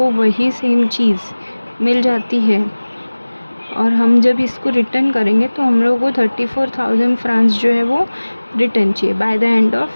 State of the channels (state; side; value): inverted; both; correlation -1.00